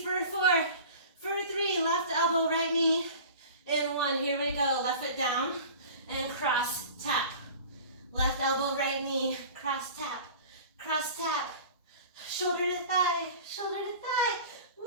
for 4, for 3, left elbow, right knee. In 1, here we go. Left foot down and cross, tap. Left elbow, right knee, cross, tap, cross, tap. Shoulder to thigh, shoulder to thigh.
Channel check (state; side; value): inverted; both; correlation -0.40